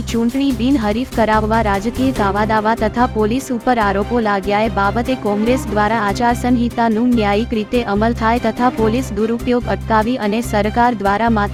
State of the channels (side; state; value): both; identical; correlation 1.00